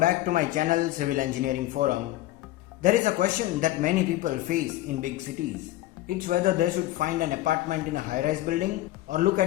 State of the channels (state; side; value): quieter; right; 15.6 dB